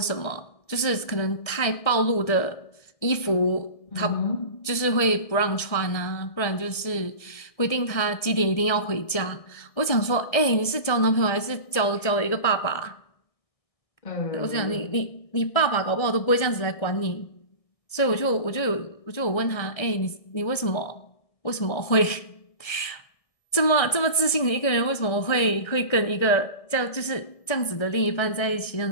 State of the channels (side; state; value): right; late; 1.6 ms